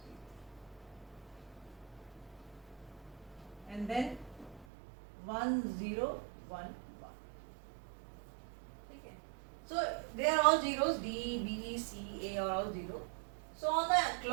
And then 1, 0, 1, 1. Okay. So they are all zeros. D, B, C, A are all 0. So on the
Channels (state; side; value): drops out; left; at 4.7 s